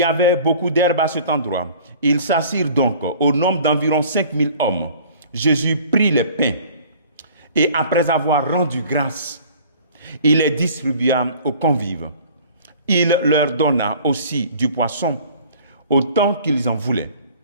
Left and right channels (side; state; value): both; inverted; correlation -0.49